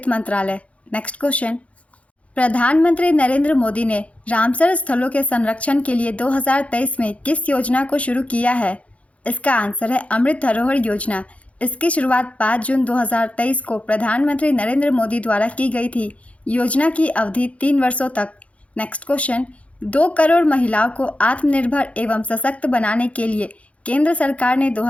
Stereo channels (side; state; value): right; late; 0.064 ms